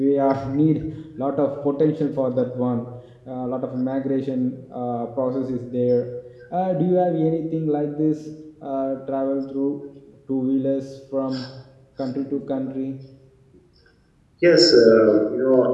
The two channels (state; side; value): identical; both; correlation 1.00